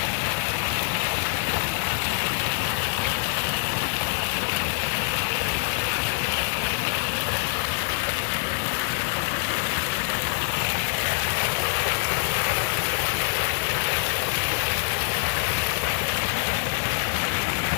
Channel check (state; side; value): silent; right; 62 dB below the other